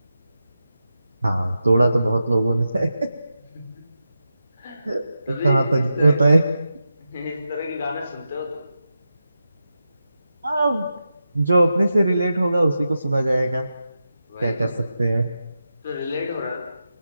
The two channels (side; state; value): both; inverted; correlation -0.89